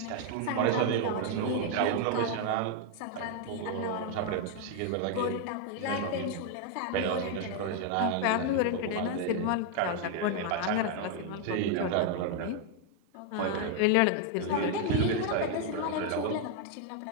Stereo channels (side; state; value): both; different; correlation 0.00